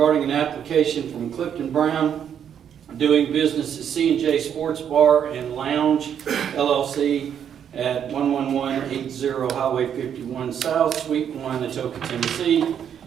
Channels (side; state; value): left; quieter; 8.7 dB